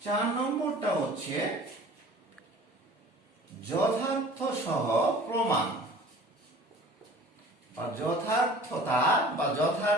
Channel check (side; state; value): both; normal; correlation 0.46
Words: 4 নম্বরটা হচ্ছে যথার্থ সহ প্রমাণ বা যথার্থতা বা